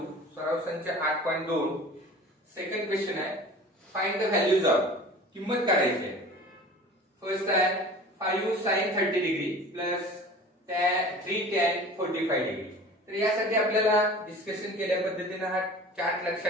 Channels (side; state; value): both; normal; correlation 0.41